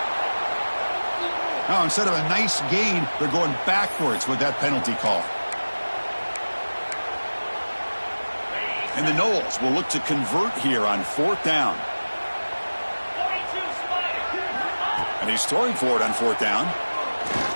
Now, instead of a nice gain, they're going backwards with that penalty call. And the Noles will look to convert here on fourth down. And he's throwing for it on fourth down.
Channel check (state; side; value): inverted; both; correlation -1.00